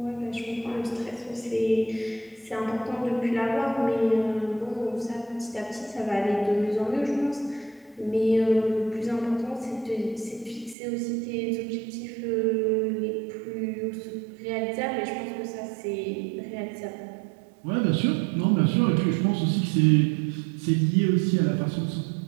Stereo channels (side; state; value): left; drops out; at 10.8 s